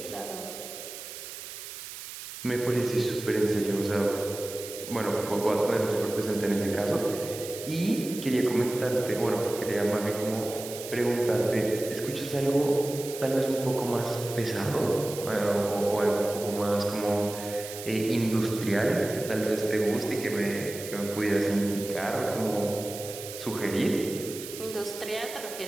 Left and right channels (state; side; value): noise; right; hiss, 11 dB below the sound